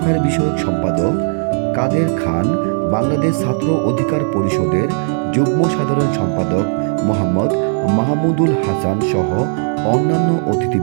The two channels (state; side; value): silent; left; 59 dB below the other